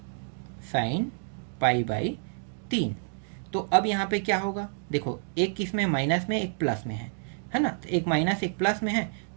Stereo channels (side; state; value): left; silent; digital silence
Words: साइन π/3। तो अब यहाँ पे क्या होगा, देखो एक किस में माइनस में एक प्लस में है ना। तो एक माइनस एक प्लस में है